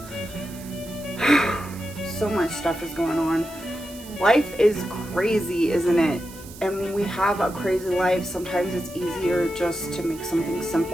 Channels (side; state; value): right; noise; hiss, 18 dB below the sound